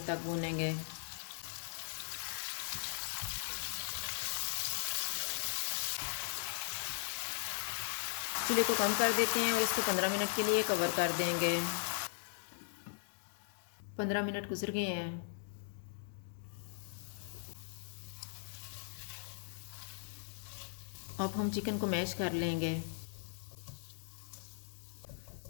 तक भूनेंगे। चूल्हे को कम कर देते हैं और इसको 15 मिनट के लिए कवर कर देंगे। 15 मिनट गुजर गए हैं। अब हम चिकन को मैश कर लेंगे।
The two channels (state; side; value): silent; right; digital silence